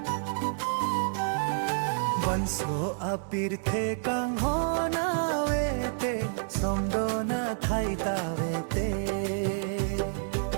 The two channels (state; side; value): silent; left; 59 dB below the other